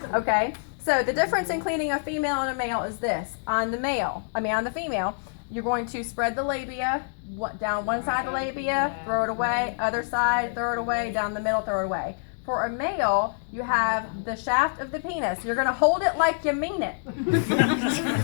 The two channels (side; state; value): right; silent; digital silence